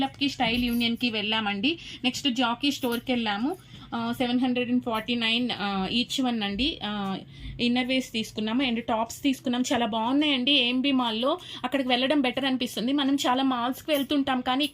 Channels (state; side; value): identical; both; correlation 1.00